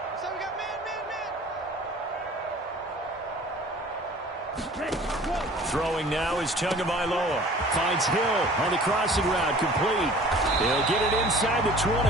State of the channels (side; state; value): both; normal; correlation 0.47